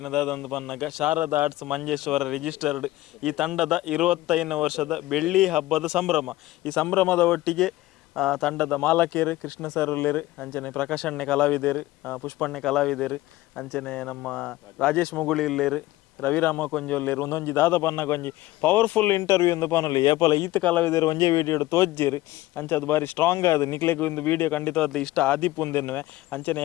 ಬನ್ನಾಗ ಶಾರದಾ ಆರ್ಟ್ಸ್ ಮಂಜೇಶ್ವರ ರಿಜಿಸ್ಟರ್ಡ್ ಈ ತಂಡದ 25ನೇ ವರ್ಷದ ಬೆಳ್ಳಿ ಹಬ್ಬದ ಸಂಭ್ರಮ ಈ ಸಂಭ್ರಮದ ಒಟ್ಟಿಗೆ ತಂಡದ ಮಾಲಕೇರು ಕೃಷ್ಣ ಸರ್ ಉಳ್ಳೇರು ಅಂಚನೆ ಪ್ರಕಾಶಣ್ಣೆ ಕಲಾವಿದರು ಪುಷ್ಪಣ್ಣೆ ಕಲಾವಿದರು ಅಂಚನೆ ನಮ್ಮ ರಾಜೇಶ್ ಮುಗುಳಿ ಇಲ್ಲೇರು ರವಿರಾಮ ಕೊಂಜೊಲ್ಲೇರು ಒಂದೊಂಜಿ ದಾದ ಪನ್ನಗ ಒಂಜಿ ಪವರ್ಫುಲ್ ಇಂಟರ್ವ್ಯೂ ಎಂದು ಪನೊಲಿ ಏಪಲ ಈತ ಕಲಾವಿದರು ಒಂಜೇ ವಿಡಿಯೋ ತೋಜ್ಜೇರು ಅಂಚ ಅದು ಬಾರಿ ಸ್ಟ್ರಾಂಗ್ ಆದ ನಿಕ್ಲೆಗ್ ಒಂದು ವಿಡಿಯೋ ಖಂಡಿತವಾದ ಇಷ್ಟ ಆದಿಪ್ಪುಂದೆನ್ನುವೆ ಅಂಚನೆ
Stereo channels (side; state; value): right; quieter; 17.4 dB